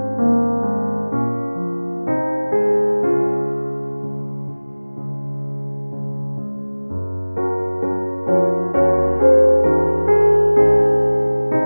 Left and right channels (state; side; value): inverted; both; correlation -1.00